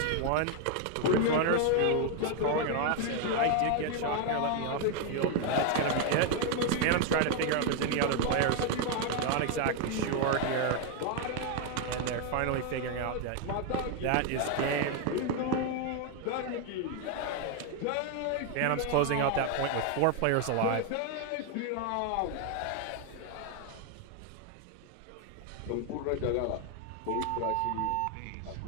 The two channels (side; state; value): both; different; correlation 0.01